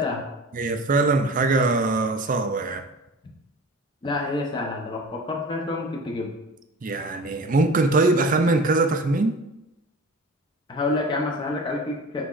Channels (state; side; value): normal; both; correlation 0.37